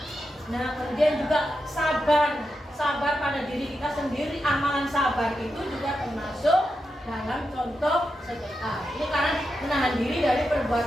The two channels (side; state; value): both; normal; correlation 0.87